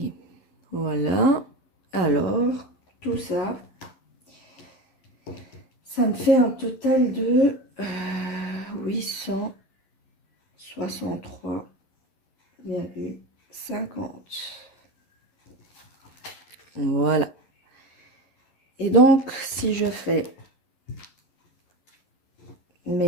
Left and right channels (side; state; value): right; late; 11 ms